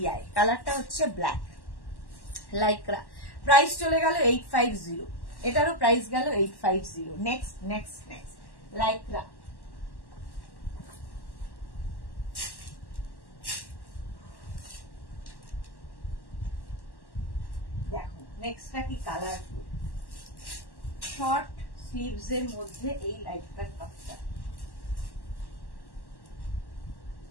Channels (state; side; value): late; right; 1.1 ms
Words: কালারটা হচ্ছে ব্ল্যাক লাইক্রা। প্রাইস চলে গেল 850। এটারও প্রাইস গেল 850। Next next next Lycra. দেখো নেক্সটটা কি কালারফুল, শর্ট স্লিভস এর মধ্যে এই লাইক্রার টপটা।